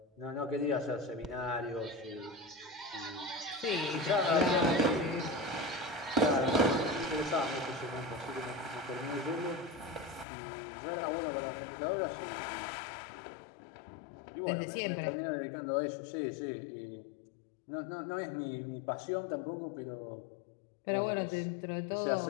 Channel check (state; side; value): drops out; right; at 10.2 s